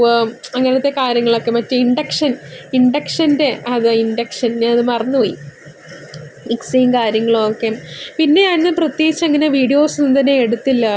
അങ്ങനത്തെ കാര്യങ്ങളൊക്കെ, മറ്റേ ഇൻഡക്ഷൻ്റെ ഞാനത് മറന്നുപോയി, മിക്സിയും കാര്യങ്ങളും ഒക്കെ. പിന്നെ ഞാൻ പ്രത്യേകിച്ച് അങ്ങനെ വീഡിയോസ് ഒന്നും തന്നെ എടുത്തില്ല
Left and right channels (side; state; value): both; identical; correlation 1.00